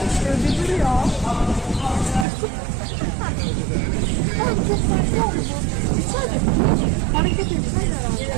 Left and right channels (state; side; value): drops out; left; at 2.2 s